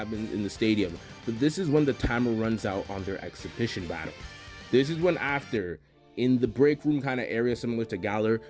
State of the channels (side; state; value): both; identical; correlation 1.00